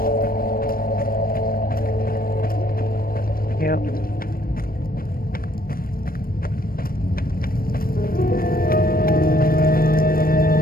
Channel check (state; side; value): late; right; 0.43 ms